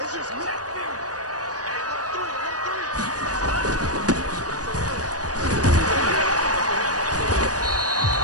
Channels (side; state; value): left; late; 0.68 ms